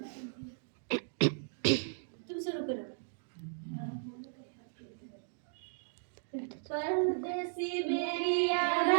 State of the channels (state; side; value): silent; left; digital silence